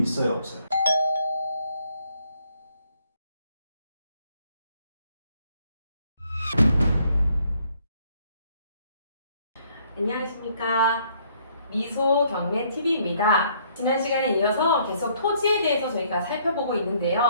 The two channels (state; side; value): inverted; both; correlation -0.66